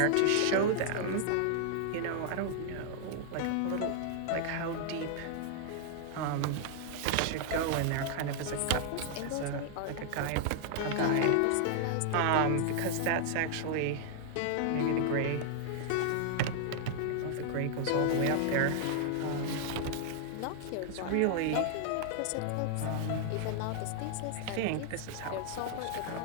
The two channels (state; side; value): different; both; correlation -0.01